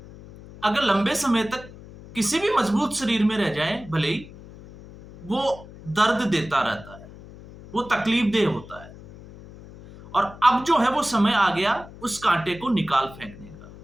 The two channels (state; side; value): noise; left; hum, 18 dB below the sound